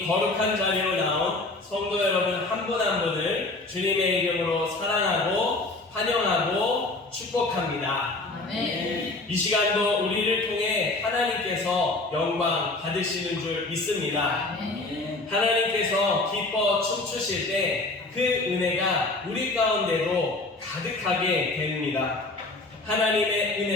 거룩한 자리로 나온 성도 여러분 한 분 한 분을 주님의 이름으로 사랑하고 환영하고 축복합니다. 아멘. 이 시간도 우리를 통해 하나님께서 영광 받으시는 줄 믿습니다. 아멘. 하나님께서 기뻐 춤추실 때 그 은혜가 우리 가운데로 가득하게 됩니다. 하나님의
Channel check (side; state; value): right; quieter; 3.1 dB